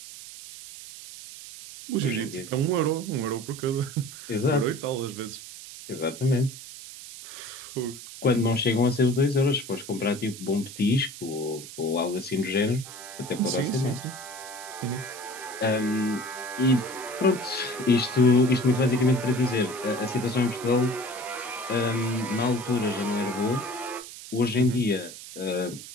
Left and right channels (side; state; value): right; noise; hiss, 13 dB below the sound